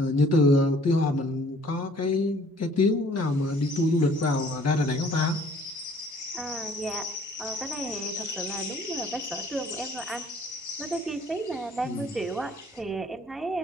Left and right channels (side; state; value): both; normal; correlation 0.56